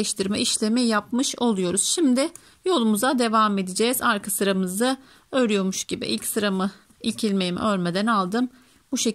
işlemi yapmış oluyoruz. Şimdi yolumuza devam edeceğiz. Arka sıramızı örüyormuş gibi ilk ilmeğimi örmeden aldım. Bu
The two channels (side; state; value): both; identical; correlation 1.00